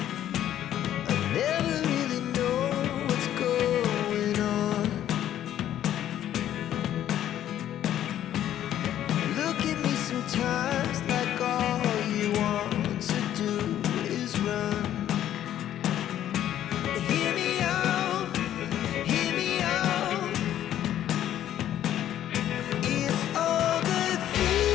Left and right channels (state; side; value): quieter; right; 11.5 dB